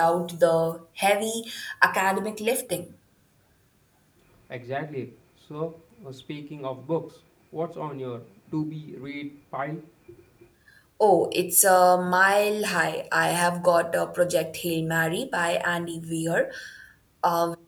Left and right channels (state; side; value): identical; both; correlation 1.00